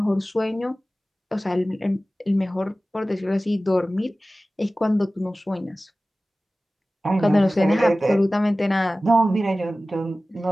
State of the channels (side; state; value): both; normal; correlation 0.97